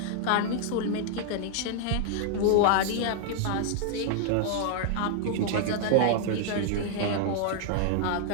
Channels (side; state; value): both; different; correlation 0.00